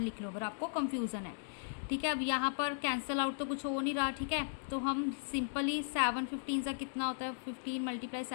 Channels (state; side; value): silent; right; digital silence